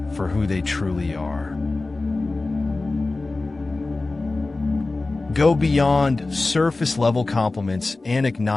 for who they truly are. Go beyond surface-level compliments and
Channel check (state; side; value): quieter; right; 3.3 dB